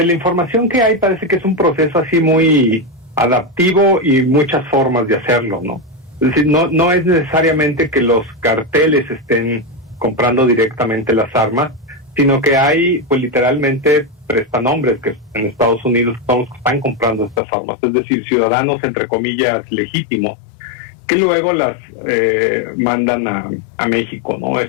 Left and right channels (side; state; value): right; drops out; at 17.4 s